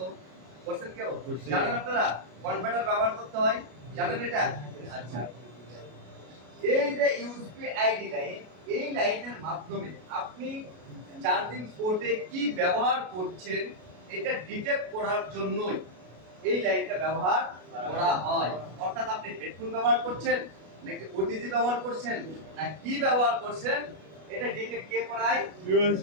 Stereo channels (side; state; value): left; late; 33 ms